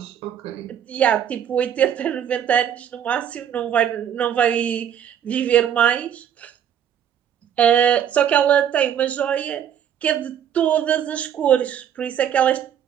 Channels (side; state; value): left; quieter; 9.3 dB